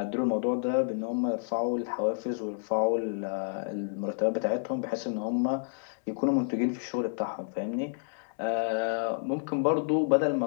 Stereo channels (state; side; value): silent; right; digital silence